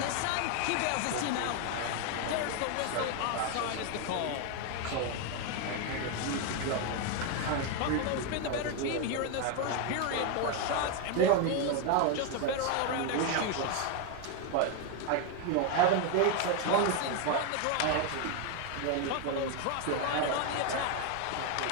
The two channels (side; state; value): both; different; correlation 0.01